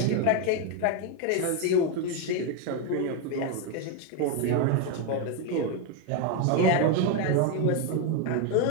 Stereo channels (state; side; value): different; both; correlation 0.02